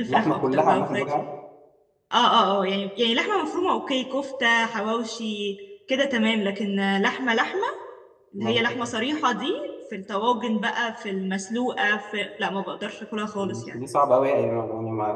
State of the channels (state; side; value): identical; both; correlation 1.00